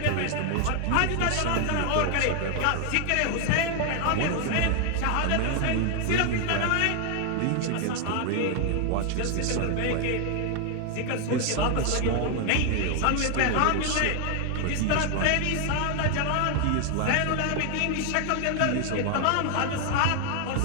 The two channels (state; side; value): different; both; correlation 0.00